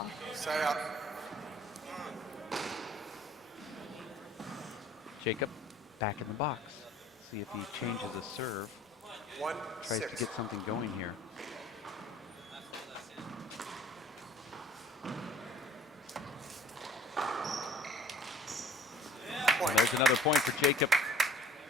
Side out. Jacob back in the box. See if he changes a serve. Tries to get something going here. And there's another point for Jacob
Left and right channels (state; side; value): normal; both; correlation 0.52